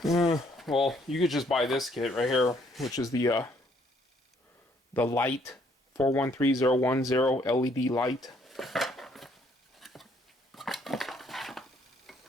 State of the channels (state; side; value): normal; both; correlation 0.66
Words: well, you could just buy this kit right here, which is the light 413010 LED light.